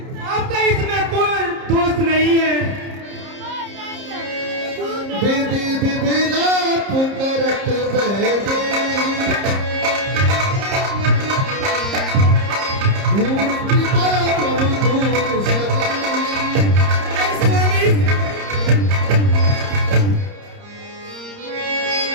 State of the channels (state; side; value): late; left; 30 ms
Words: आपका इसमें कोई दोस्त नहीं है। विधि विभिलाप करत बैदे, धूल कृपा प्रभु धूल सदे। स्वामी,